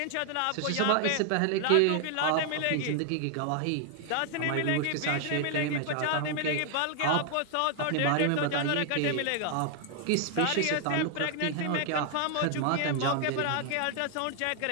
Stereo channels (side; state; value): both; different; correlation 0.00